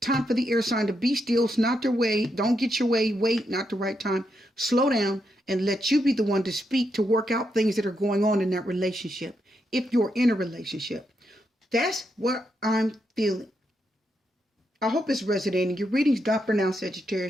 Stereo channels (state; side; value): normal; both; correlation 0.82